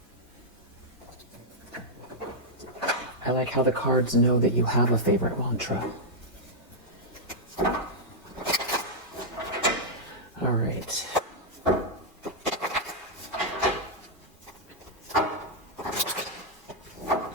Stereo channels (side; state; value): both; normal; correlation -0.06